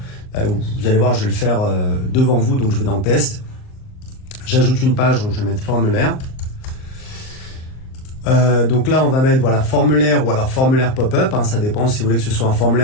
vous allez voir, je vais le faire devant vous, donc je vais dans test. J'ajoute une page, donc je vais mettre formulaire. Donc là, on va mettre voilà, formulaire ou alors formulaire pop-up. Hein, ça dépend si vous voulez que ce soit un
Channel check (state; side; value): late; right; 38 ms